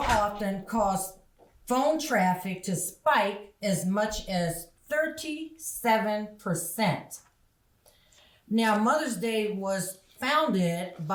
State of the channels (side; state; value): both; identical; correlation 1.00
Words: caused phone traffic to spike as much as 37%. Now, Mother's Day was founded